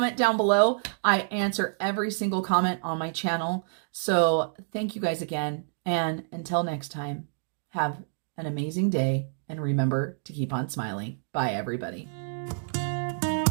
down below. I answer every single comment on my channel. So thank you guys again. And until next time, have an amazing day. And remember to keep on smiling. Bye, everybody.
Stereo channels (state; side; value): silent; left; digital silence